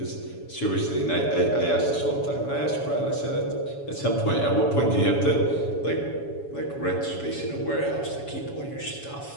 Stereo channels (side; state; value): right; late; 7.1 ms